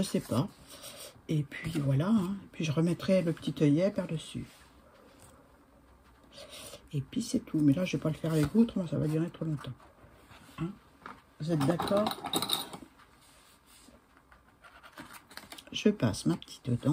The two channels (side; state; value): both; identical; correlation 1.00